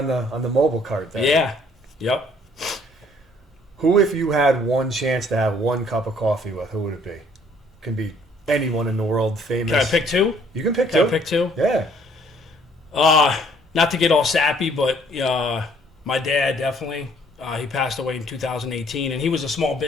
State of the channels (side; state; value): both; normal; correlation 0.61